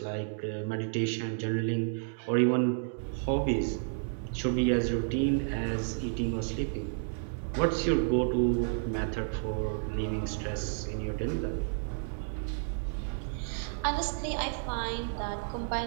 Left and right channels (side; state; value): left; silent; digital silence